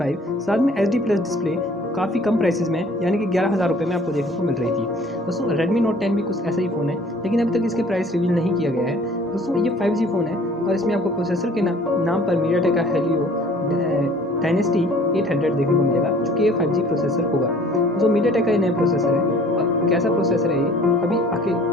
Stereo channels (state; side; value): normal; both; correlation 0.53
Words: साथ में HD प्लस डिस्प्ले काफ़ी कम प्राइसेस में यानी कि 11,000 रुपये में आपको देखने को मिल रही थी। दोस्तों Redmi Note 10 भी कुछ ऐसा ही फ़ोन है लेकिन अभी तक इसके प्राइस रिवील नहीं किया गया है। दोस्तों ये 5G फ़ोन है और इसमें आपको प्रोसेसर के नाम पर मीडियाटेक का Helio डायनेस्टी 800 देखने को मिलेगा जो कि 5G प्रोसेसर होगा। तो मीडियाटेक का ये नया प्रोसेसर है और कैसा प्रोसेसर है ये अभी